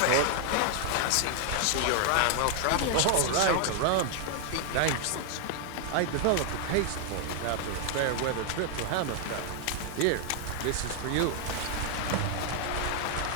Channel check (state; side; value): different; both; correlation 0.00